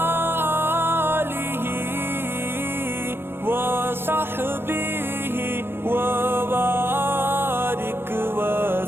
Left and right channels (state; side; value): late; left; 0.11 ms